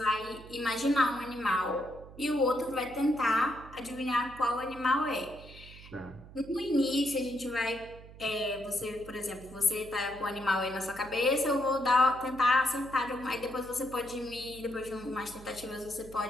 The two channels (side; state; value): right; noise; hum, 18 dB below the sound